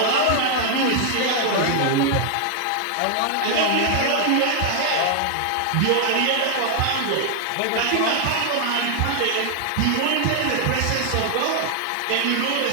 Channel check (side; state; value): both; different; correlation 0.00